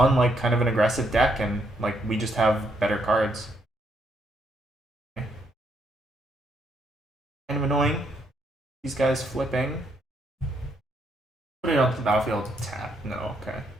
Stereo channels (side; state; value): both; normal; correlation 0.74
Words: like kind of an aggressive deck, and like we just have better cards. Okay. Kind of annoying. These guys flipping. Put it onto the battlefield. Tap. No. Okay.